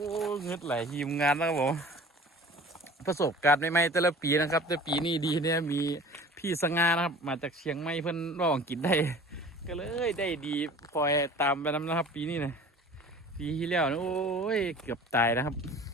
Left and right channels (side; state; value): both; normal; correlation 0.44